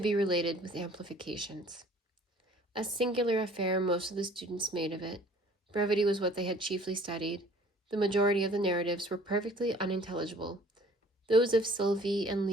be related with amplifications. A singular affair most of the students made of it. Brevity was what they had chiefly studied. The majority of the narratives were perfectly unintelligible. Those of Sylvie and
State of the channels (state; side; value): normal; both; correlation 0.53